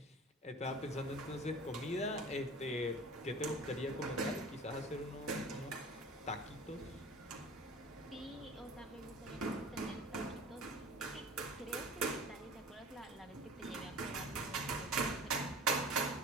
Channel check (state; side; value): normal; both; correlation 0.40